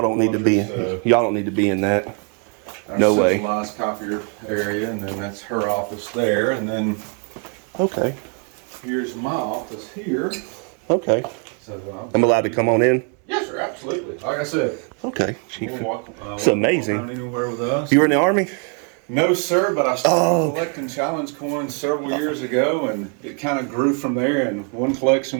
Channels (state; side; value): quieter; left; 39.0 dB